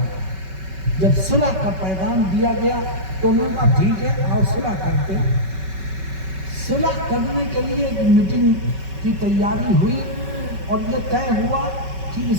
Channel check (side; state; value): left; late; 5.3 ms